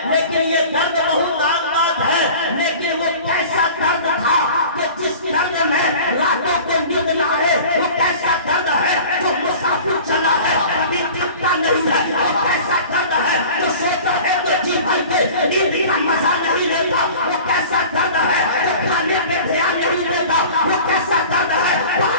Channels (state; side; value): inverted; both; correlation -0.41